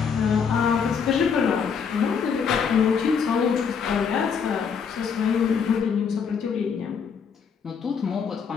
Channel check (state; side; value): quieter; right; 6.4 dB